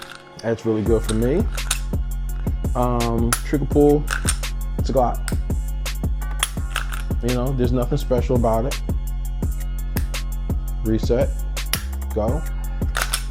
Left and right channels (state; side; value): identical; both; correlation 1.00